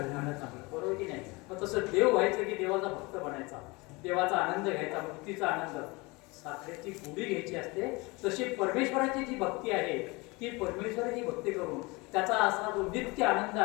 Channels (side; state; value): right; quieter; 25.3 dB